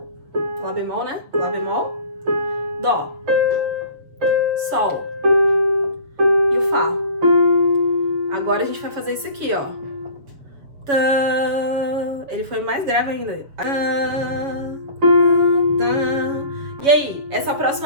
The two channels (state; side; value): late; left; 7.0 ms